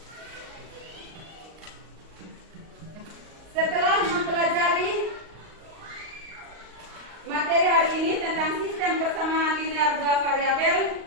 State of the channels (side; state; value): left; late; 38 ms